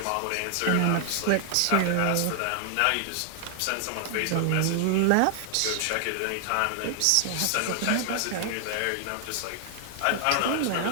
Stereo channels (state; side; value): different; both; correlation 0.00